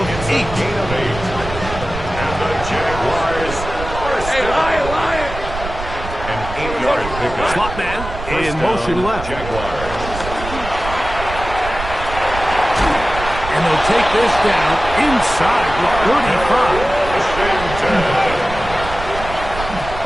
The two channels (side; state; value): right; noise; rumble, 9 dB below the sound